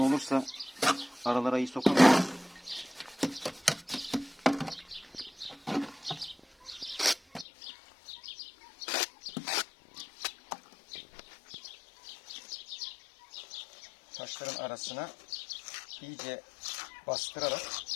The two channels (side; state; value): right; drops out; at 7.5 s